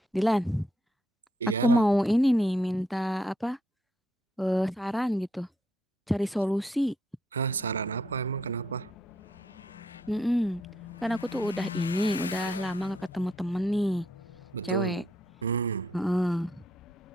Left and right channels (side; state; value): both; normal; correlation 0.75